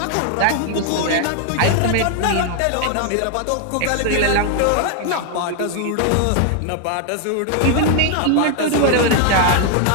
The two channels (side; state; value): both; different; correlation 0.00